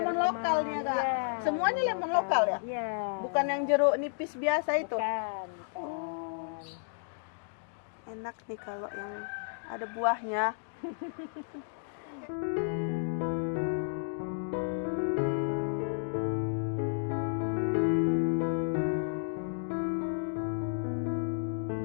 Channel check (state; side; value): silent; right; digital silence